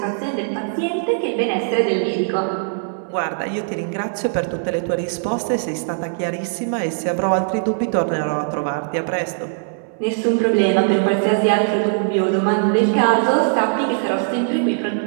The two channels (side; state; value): left; silent; 64 dB below the other